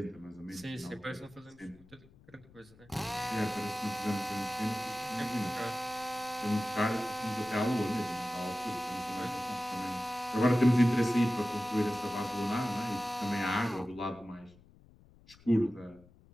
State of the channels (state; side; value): noise; left; rumble, 25 dB below the sound